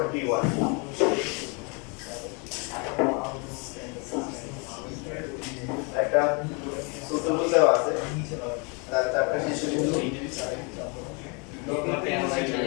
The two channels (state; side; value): quieter; right; 32.9 dB